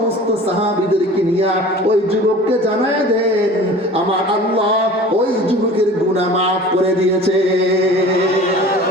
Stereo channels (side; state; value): both; normal; correlation 0.41